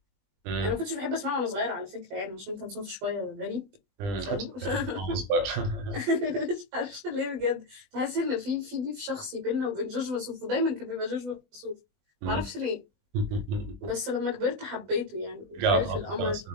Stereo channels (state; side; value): late; left; 20 ms